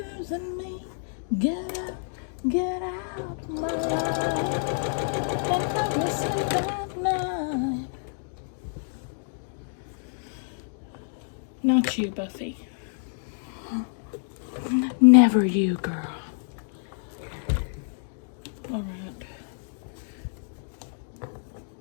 me. Get out my life and help me sleep at night. Not you, Buffy. Never you, girl. All right.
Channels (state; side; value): silent; right; digital silence